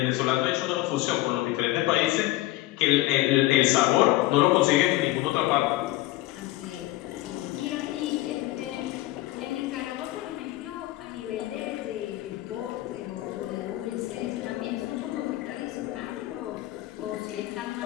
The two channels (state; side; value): quieter; right; 17.3 dB